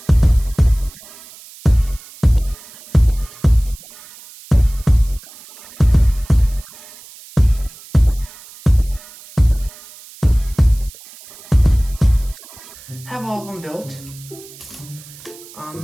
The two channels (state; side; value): noise; right; hiss, 20 dB below the sound